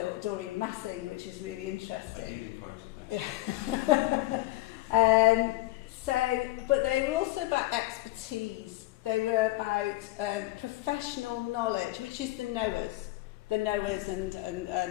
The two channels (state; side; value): quieter; right; 18.5 dB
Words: Doreen Massing, which is really interesting. But they were also about expertise. They were about professional knowledge, which is the knowers and